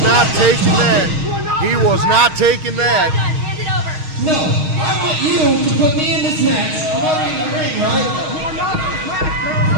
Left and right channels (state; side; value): late; left; 6.4 ms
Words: not taking that. He was not taking that. Hand it over. No, I want you to put me in this match. I'm already in the ring, right?